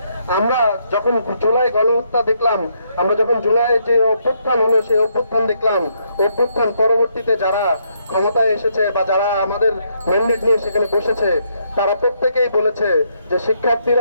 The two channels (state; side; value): inverted; both; correlation -0.75